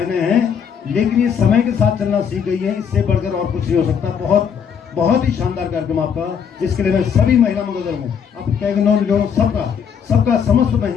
हैं। लेकिन ये समय के साथ चलना सीख गई है, इससे बढ़कर और कुछ नहीं हो सकता। बहुत बहुत ही शानदार कार्यक्रम आपका, इसके लिए मैं सभी महिला मंगल दल हूँ, आप कैगनों सबका समस्त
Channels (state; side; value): quieter; right; 7.3 dB